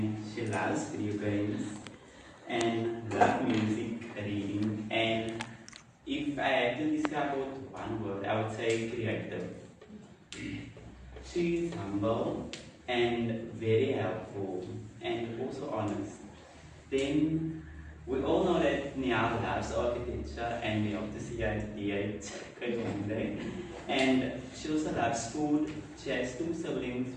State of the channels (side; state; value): both; identical; correlation 1.00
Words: she loves video games, and loves music, reading, and if I had to describe it with one word, I would say creative. She is humble and very helpful and also honest. Then we all know that Niall loves architecture and we hope to see her at D8 one day. And she also loves food. She has two siblings,